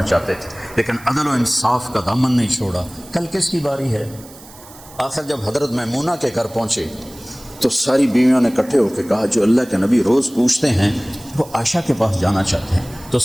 چاہتے تھے، لیکن عدل و انصاف کا دامن نہیں چھوڑا۔ کل کس کی باری ہے؟ آخر جب حضرت میمونہ کے گھر پہنچے تو ساری بیویوں نے اکٹھے ہو کے کہا جو اللہ کے نبی روز پوچھتے ہیں وہ عائشہ کے پاس جانا چاہتے ہیں۔ تو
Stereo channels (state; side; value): noise; right; hiss, 21 dB below the sound